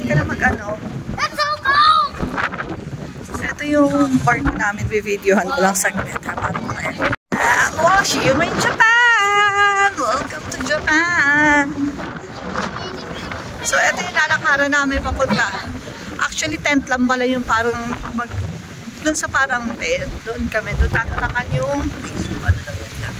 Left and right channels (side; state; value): both; identical; correlation 1.00